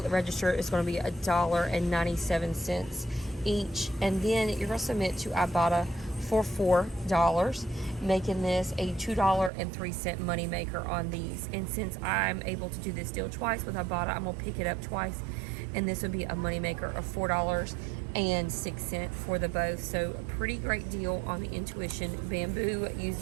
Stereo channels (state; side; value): drops out; left; at 9.5 s